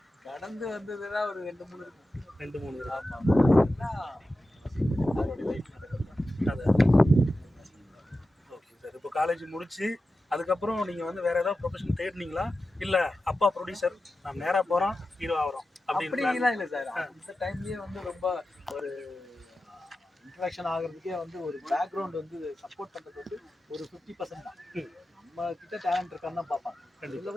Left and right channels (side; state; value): both; normal; correlation 0.92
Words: வந்ததுன்னா ஒரு 2-3 இருக்கும். 2-3 ஆமாம். அதோடைய லைஃப் அது ஓகே சார். இப்போ காலேஜ் முடிச்சு அதுக்கப்புறம் நீங்கள் வந்து வேறு ஏதாவது ப்ரொஃபஷன் தேடினீங்களா, இல்லை அப்பா ப்ரொடியூசர் நான் நேராக போகிறோம் ஹீரோ ஆகிறோம் அப்படின்லாம் இல்லை சார். அந்த டைம்லேயே வந்து ரொம்ப ஒரு இன்ட்ரடக்ஷன் ஆகிறதுக்கே வந்து ஒரு பேக்ரவுண்ட் வந்து சப்போர்ட் பண்ணுறது வந்து ஒரு 50% தான். நம்ம கிட்ட டேலண்ட் இருக்கான்னு தான் பார்ப்பாங்க. இதில்